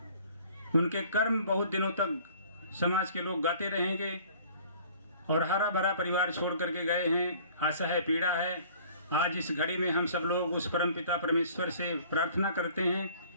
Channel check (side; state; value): both; inverted; correlation -0.52